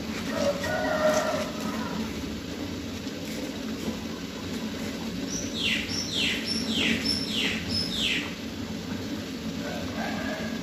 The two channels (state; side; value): identical; both; correlation 1.00